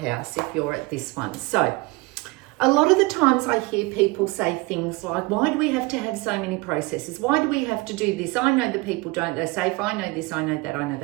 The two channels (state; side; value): quieter; left; 23.9 dB